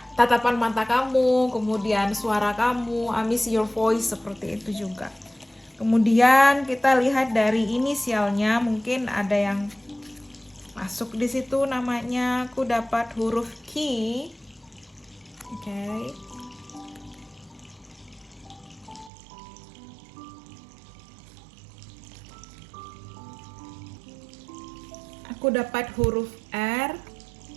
tatapan mata kamu, kemudian suara kamu, I miss your voice, seperti itu juga. Kemudian kita lihat dari inisialnya, mungkin ada yang masuk di situ namanya. Aku dapat huruf Q. Oke. Aku dapat huruf R.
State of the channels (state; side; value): drops out; left; at 19.1 s